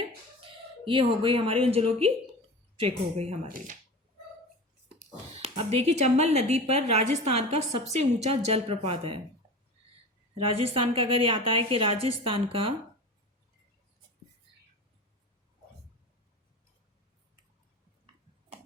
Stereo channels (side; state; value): both; normal; correlation 0.32